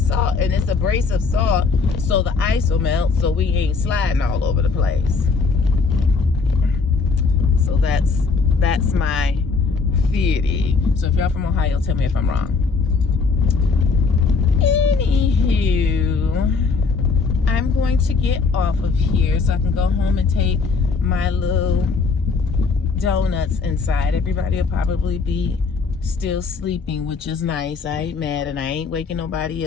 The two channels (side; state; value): right; quieter; 4.7 dB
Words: and it's abrasive salt, so the ice will melt, so we ain't sliding all over the place. So that's my theory. So if y'all from Ohio, tell me if I'm wrong. Anywho, I'm going to get off of here so I can go home and take my little donuts inside. Everybody will probably be still sleeping, which is nice. I ain't mad, and I ain't waking nobody